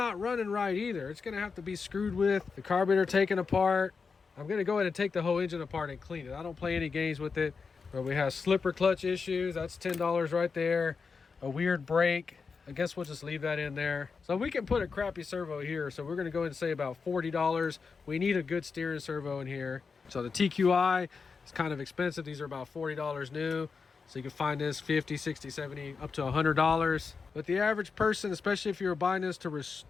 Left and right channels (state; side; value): quieter; right; 5.1 dB